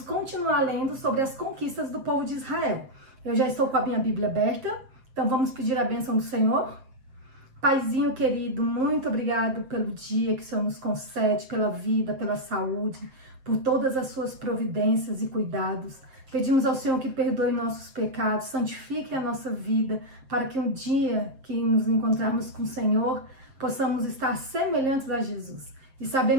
continuar lendo sobre as conquistas do povo de Israel. Eu já estou com a minha Bíblia aberta, então vamos pedir a bênção do Senhor. Paizinho querido, muito obrigado pelo dia que o Senhor nos concede, pela vida, pela saúde, por todas as suas providências e cuidados. Pedimos ao Senhor que perdoe nossos pecados, santifique a nossa vida, para que um dia que nos encontrarmos com o Senhor, possamos estar semelhantes a Jesus. E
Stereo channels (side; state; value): left; late; 7.6 ms